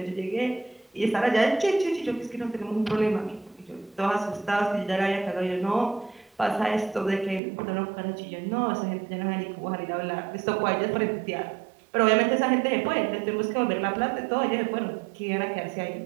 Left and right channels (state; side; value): drops out; left; at 7.4 s